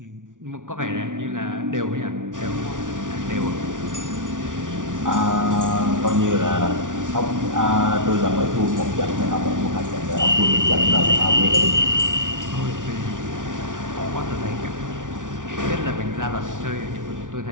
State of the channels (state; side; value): late; left; 0.87 ms